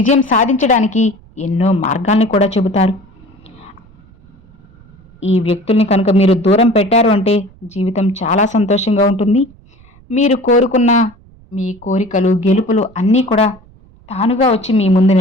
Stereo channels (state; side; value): noise; right; rumble, 26 dB below the sound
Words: సాధించడానికి ఎన్నో మార్గాల్ని కూడా చెబుతారు. ఈ వ్యక్తుల్ని కనుక మీరు దూరం పెట్టారు అంటే జీవితం చాలా సంతోషంగా ఉంటుంది. మీరు కోరుకున్న మీ కోరికలు, గెలుపులు అన్నీ కూడా తానుగా వచ్చి మీ ముందు